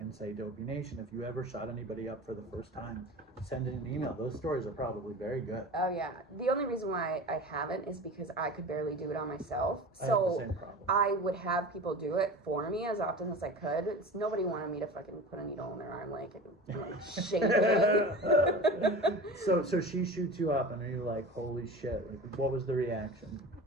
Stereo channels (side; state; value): both; normal; correlation 0.34